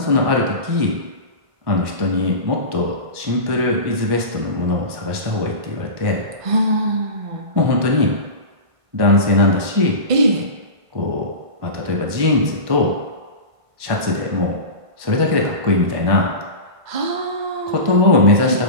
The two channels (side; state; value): left; late; 1.5 ms